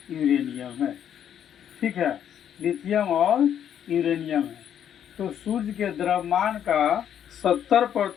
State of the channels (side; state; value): right; quieter; 9.5 dB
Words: यूरेनियम है। ठीक है, लिथियम और यूरेनियम है। तो सूर्य के द्रव्यमान का